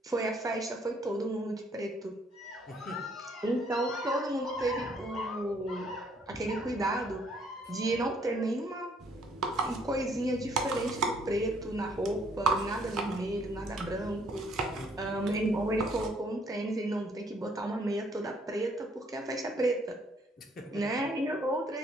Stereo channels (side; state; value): both; normal; correlation 0.65